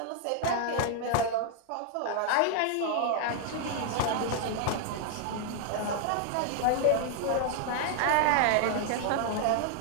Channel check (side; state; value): both; different; correlation 0.00